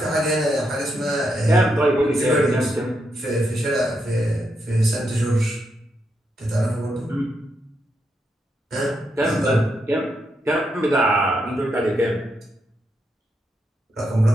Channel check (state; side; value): normal; both; correlation 0.82